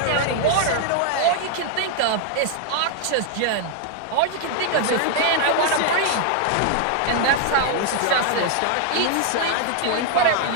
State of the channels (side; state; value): both; different; correlation 0.00